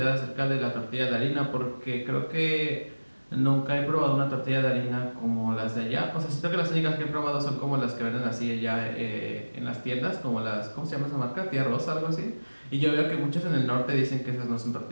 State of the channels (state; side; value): inverted; both; correlation -1.00